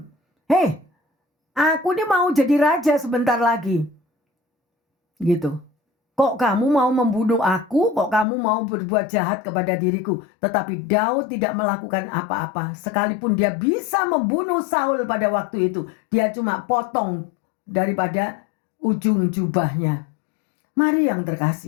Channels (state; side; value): drops out; right; at 8.2 s